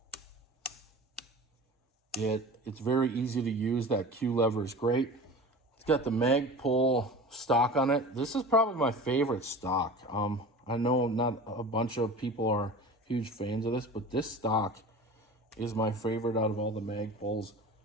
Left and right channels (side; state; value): both; normal; correlation 0.36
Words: it's very easy to use. That Q lever is great. It's got the mag pull stock on it. This is probably my favorite stock. I know not a bunch of people are huge fans of this, but this stock is my favorite out of all the mag pulls.